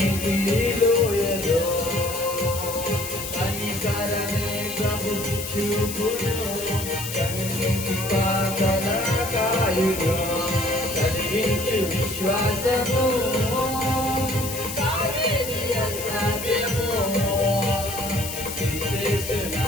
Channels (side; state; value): left; noise; hiss, 7 dB below the sound